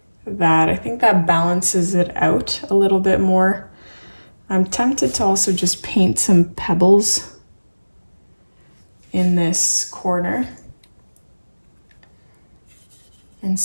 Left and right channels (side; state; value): both; inverted; correlation -1.00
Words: that. I think that balances it out a little bit more. I'm tempted to also just paint some pebbles in this corner,